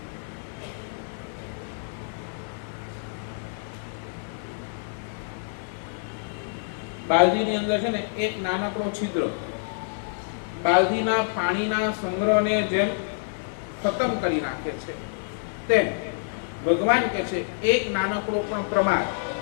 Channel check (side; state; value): right; silent; 60 dB below the other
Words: બાલદીની અંદર છે ને એક નાનકડો છિદ્ર, બાલદીના પાણીના સંગ્રહને જેમ ખતમ કરી નાખે છે તેમ ભગવાન કહે છે એક નાનકડો પણ